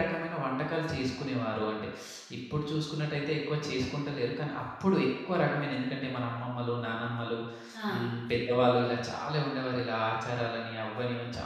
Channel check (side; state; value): both; identical; correlation 1.00